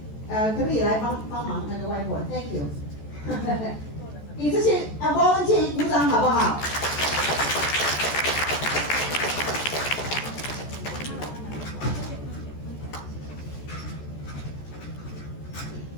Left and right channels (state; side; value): late; right; 14 ms